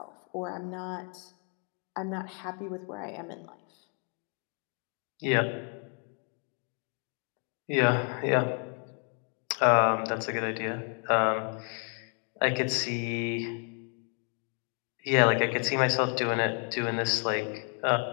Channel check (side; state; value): right; quieter; 39.4 dB